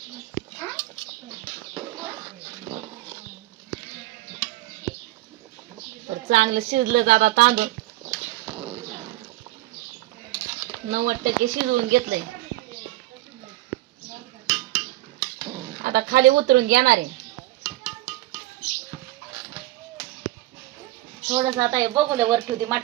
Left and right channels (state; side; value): quieter; left; 17.4 dB